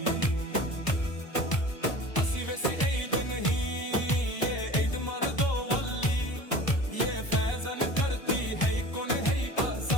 असी वैसी ईद नहीं, ये ईद मर्दो वली। ये फैजन करती है कौन है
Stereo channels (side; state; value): right; late; 1.0 ms